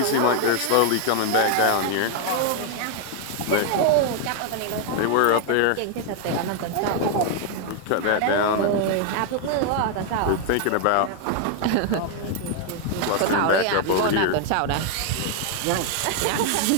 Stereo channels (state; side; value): different; both; correlation 0.00